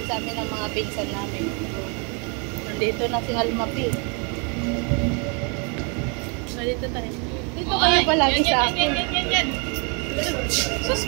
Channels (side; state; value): left; quieter; 35.0 dB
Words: sa amin ng mga pinsan namin. Nandito na si Almapi. Nandito tayo. Dito kayo palagi sa akin. Yan. Sus,